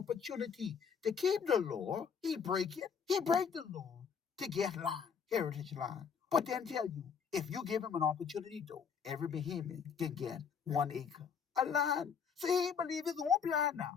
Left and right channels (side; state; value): right; quieter; 6.6 dB